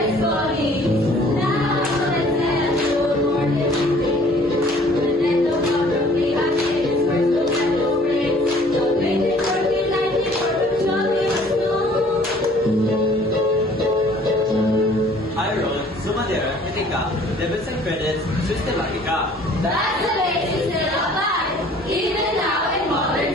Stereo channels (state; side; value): normal; both; correlation 0.55